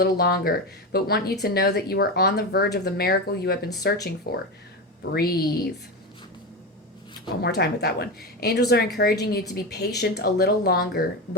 longer, but want you to know that you are on the verge of the miracle you have been searching for. Breathe. One more time with that one. Angels are encouraging you to be patient a little longer,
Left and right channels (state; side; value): normal; both; correlation 0.19